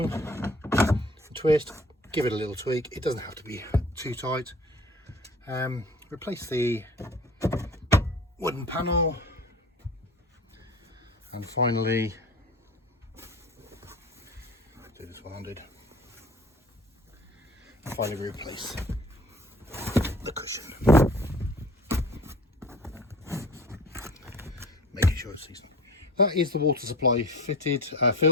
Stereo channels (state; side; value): normal; both; correlation 0.43